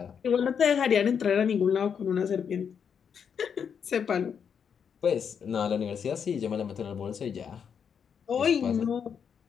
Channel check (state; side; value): quieter; right; 7.2 dB